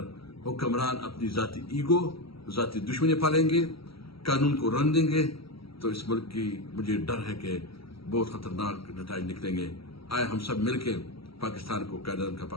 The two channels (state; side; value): late; right; 0.75 ms